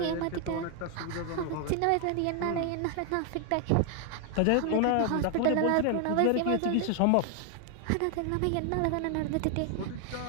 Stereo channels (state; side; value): different; both; correlation 0.00